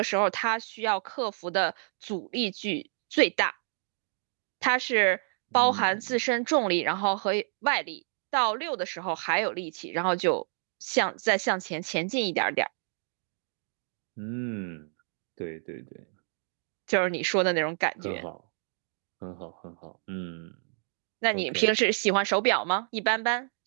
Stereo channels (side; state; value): left; silent; 58 dB below the other